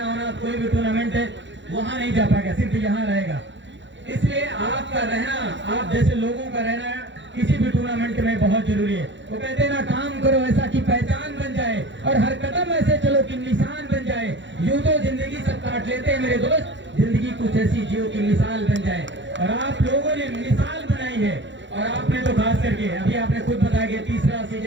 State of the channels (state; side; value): late; left; 0.54 ms